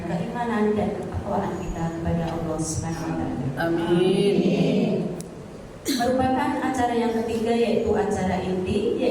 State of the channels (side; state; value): both; identical; correlation 1.00